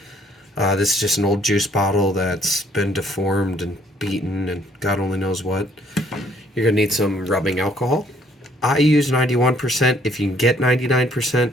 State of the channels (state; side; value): normal; both; correlation 0.63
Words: This is just an old juice bottle that's been deformed and beaten and God only knows what. You're going to need some rubbing alcohol. I use 91%. If you can get 99%,